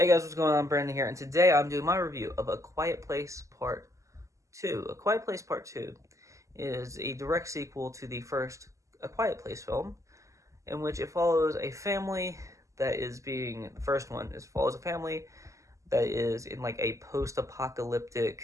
guys, what's going on? Brandon here, and today I'm doing my review of A Quiet Place Part 2. A Quiet Place Part 2 is a direct sequel to the first A Quiet Place film, in which it follows a family that is being, the first one is follows a family that is in like a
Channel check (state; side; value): late; left; 0.16 ms